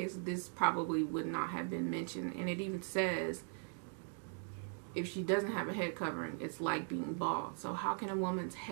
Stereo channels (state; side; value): silent; left; 51 dB below the other